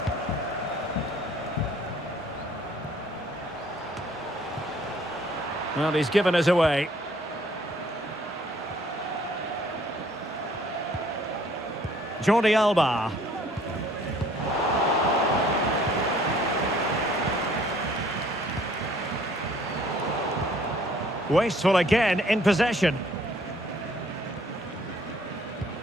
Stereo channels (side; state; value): both; normal; correlation 0.59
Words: Well, he's given us away. Jordi Alba. Wasteful again in possession.